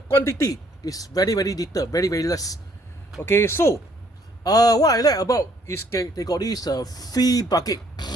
quantity is very, very little, very, very less. Okay, so what I like about is they got this free bucket.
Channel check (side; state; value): both; normal; correlation 0.64